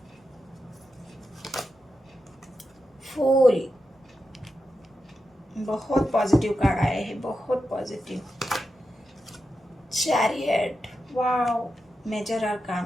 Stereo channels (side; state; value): both; normal; correlation 0.89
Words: फूल, बहुत पॉजिटिव कार्ड आए हैं, बहुत positive. Chariot, wow, major